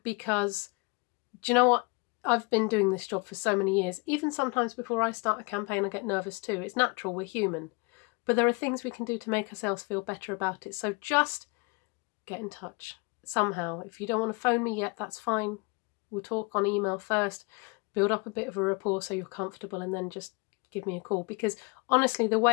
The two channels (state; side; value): quieter; right; 29.8 dB